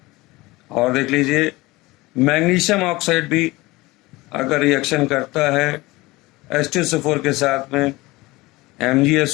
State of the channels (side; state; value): right; quieter; 21.1 dB